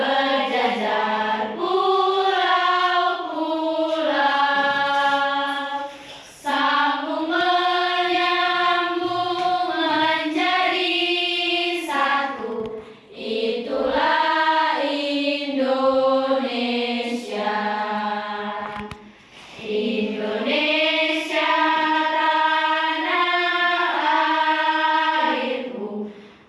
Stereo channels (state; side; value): identical; both; correlation 1.00